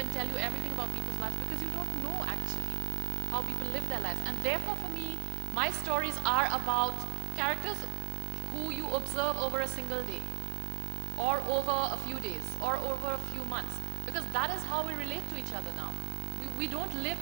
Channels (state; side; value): quieter; left; 38.0 dB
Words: tell you everything about people's lives? Because you don't know actually how people live their lives. And therefore for me, my stories are about characters who you observe over a single day, or over a few days, or over a few months. Because that is how we relate to each other now. We don't live